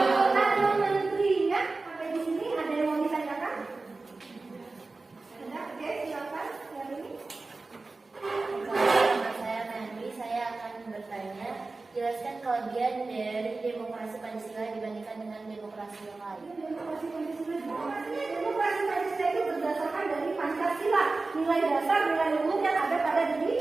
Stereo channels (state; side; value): quieter; left; 3.6 dB